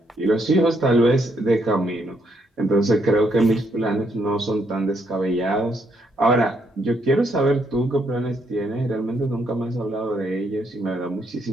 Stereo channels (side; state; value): both; normal; correlation 0.74